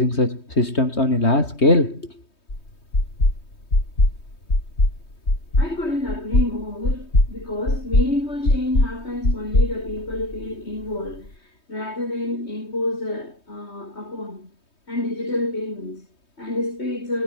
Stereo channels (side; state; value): right; late; 3.2 ms